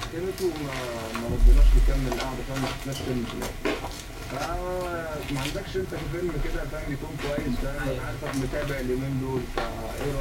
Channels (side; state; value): both; identical; correlation 1.00